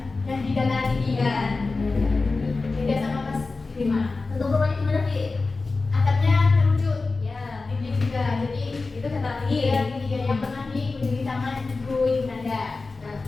dan di dataran tinggi kan. Beda sama pas di mana? Untuk rumahnya gimana Bi? Atapnya terucut. Ya. Ini juga. Jadi itu dataran tinggi ya. Tinggi yang pernah dikunjungi sama Ibu Nanda. Nah,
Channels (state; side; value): quieter; right; 3.8 dB